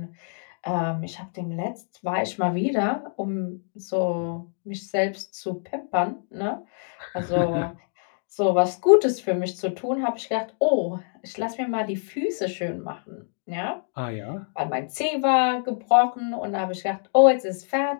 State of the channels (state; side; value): silent; right; 61 dB below the other